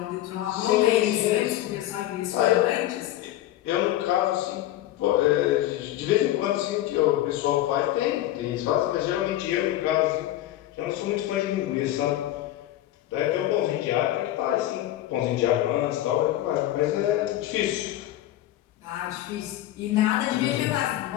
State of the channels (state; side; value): quieter; right; 14.1 dB